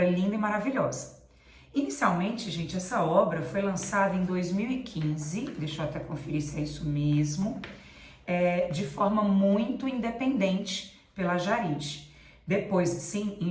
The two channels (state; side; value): identical; both; correlation 1.00